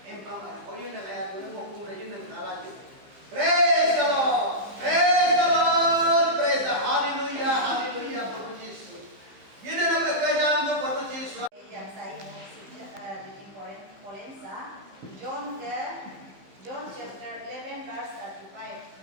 empang oyun ayat boleh ngomong rajin dan kalah. Praise the Lord, praise the Lord, praise the hallelujah, hallelujah, berpuji Yesus. Ini nama kerajaan tu berpuji Yesus. Yang saya reading point John chapter 11 verse 35.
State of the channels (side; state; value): left; late; 15 ms